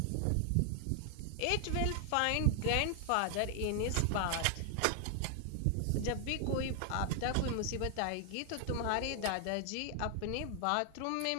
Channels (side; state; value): both; different; correlation 0.00